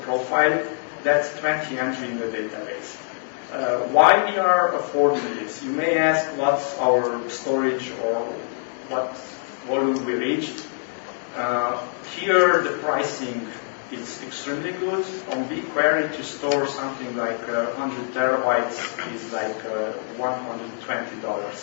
profile, that's 20 entry in the database. Why we are affording this? You may ask what's our storage or what volume we reached. Here the pricing is extremely good. On BigQuery to store something like 100 terabytes is like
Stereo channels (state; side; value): silent; right; digital silence